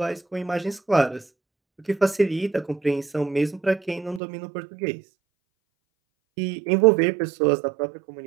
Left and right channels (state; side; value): drops out; left; at 4.2 s